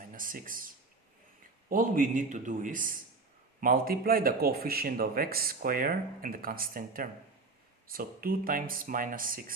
6. All we need to do is multiply the coefficient of x squared and the constant term. So 2 times minus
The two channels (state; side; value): quieter; left; 3.8 dB